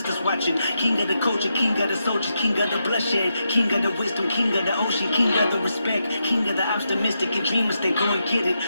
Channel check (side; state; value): both; inverted; correlation -0.84